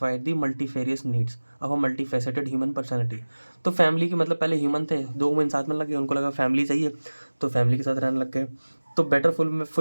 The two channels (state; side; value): inverted; both; correlation -1.00